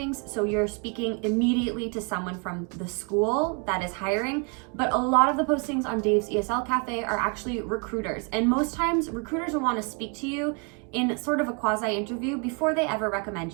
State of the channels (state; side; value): quieter; left; 35.3 dB